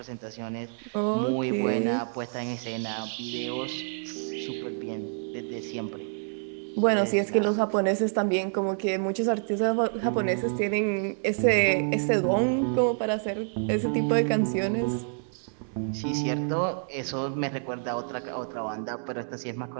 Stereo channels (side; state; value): left; silent; 59 dB below the other